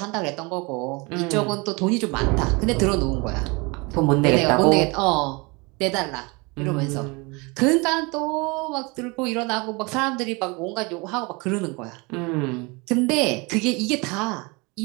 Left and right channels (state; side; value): quieter; left; 27.6 dB